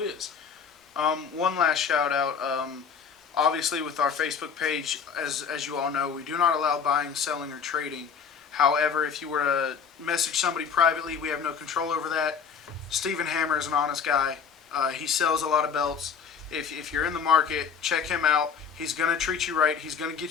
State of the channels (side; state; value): right; quieter; 6.6 dB